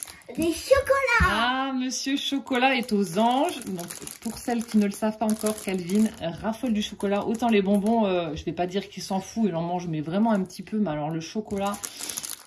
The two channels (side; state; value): both; identical; correlation 1.00